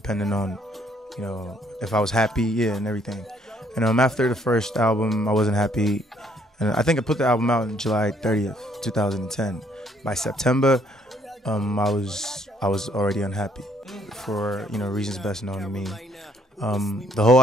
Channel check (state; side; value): normal; both; correlation 0.66